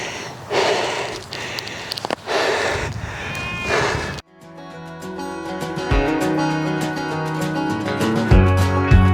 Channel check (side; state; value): both; identical; correlation 1.00